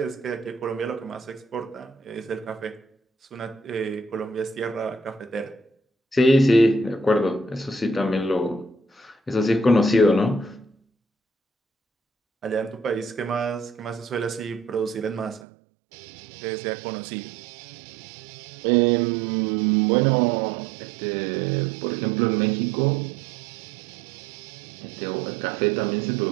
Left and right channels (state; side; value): drops out; left; at 15.4 s